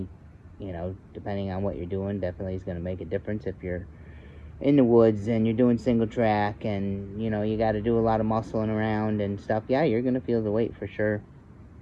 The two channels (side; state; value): both; identical; correlation 1.00